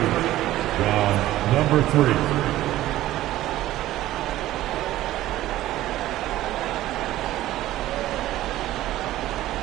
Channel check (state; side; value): quieter; left; 14.9 dB